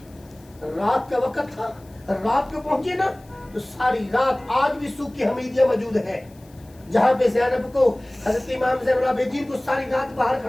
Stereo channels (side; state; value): left; noise; hiss, 29 dB below the sound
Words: रात का वक्त था, रात को पहुंचे ना, तो सारी रात आज भी सूख की हमीदिया मौजूद है, जहां पे ज़ैनब को, हज़रत इमाम ज़ैनुल आबिदीन को सारी रात बाहर